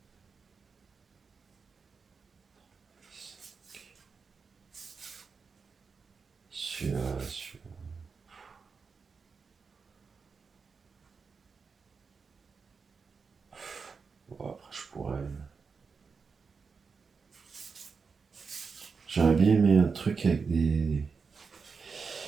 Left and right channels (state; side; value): quieter; left; 5.2 dB